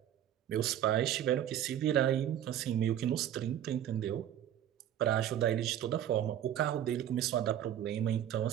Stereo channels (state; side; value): quieter; left; 10.9 dB